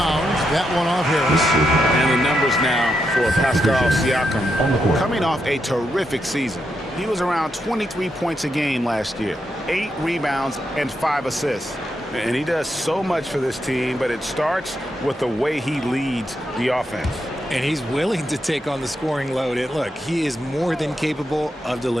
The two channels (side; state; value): both; normal; correlation 0.83